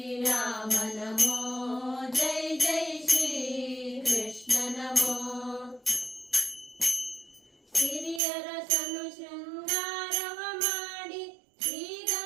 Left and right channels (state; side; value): drops out; left; at 8.2 s